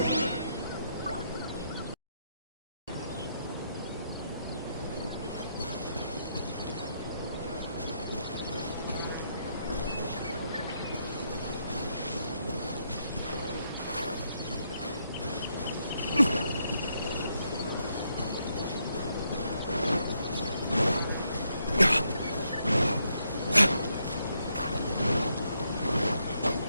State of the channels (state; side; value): inverted; both; correlation -0.77